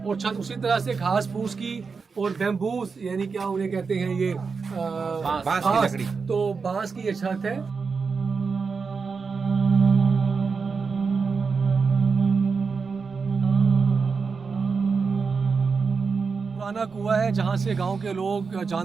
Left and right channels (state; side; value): quieter; left; 5.1 dB